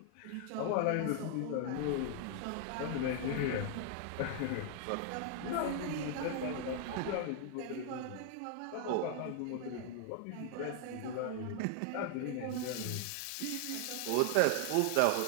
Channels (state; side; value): different; both; correlation 0.00